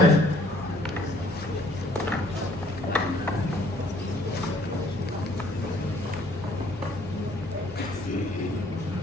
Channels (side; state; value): right; noise; hum, 20 dB below the sound